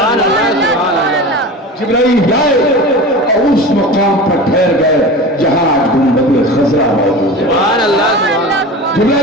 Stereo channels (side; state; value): both; normal; correlation 0.32